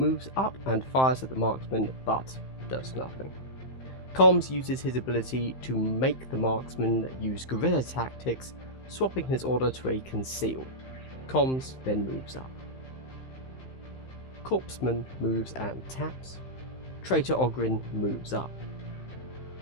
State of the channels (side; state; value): right; late; 15 ms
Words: up and fires at the marksman, but does nothing. Comms uses his ability to make the marksman use guerrilla tactics, swapping his order to a conceal. Comms then moves up. Corpseman moves and taps. Traitor Ogrin moves up.